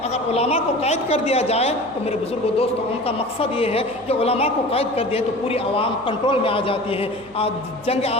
اگر علماء کو قید کر دیا جائے تو میرے بزرگوں دوستوں، ان کا مقصد یہ ہے کہ علماء کو قید کر دیا تو پوری عوام کنٹرول میں آ جاتی ہے۔ جنگ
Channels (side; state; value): right; noise; hum, 25 dB below the sound